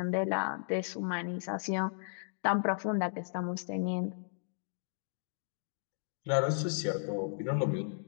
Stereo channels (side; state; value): right; silent; digital silence